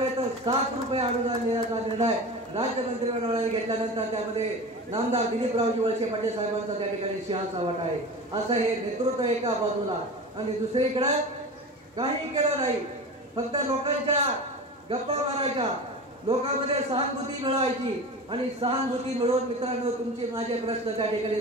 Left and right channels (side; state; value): both; normal; correlation 0.31